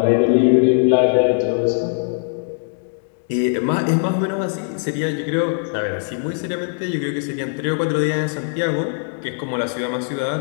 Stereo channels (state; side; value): silent; right; digital silence